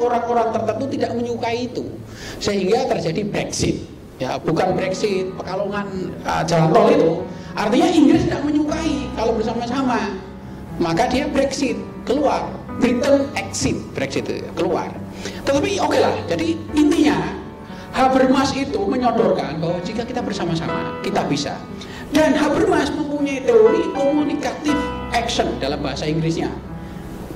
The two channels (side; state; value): both; identical; correlation 1.00